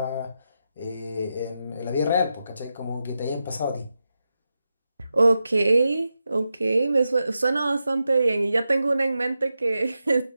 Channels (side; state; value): both; inverted; correlation -0.89